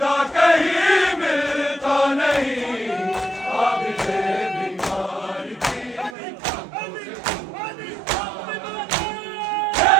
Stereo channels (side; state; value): left; drops out; at 6.2 s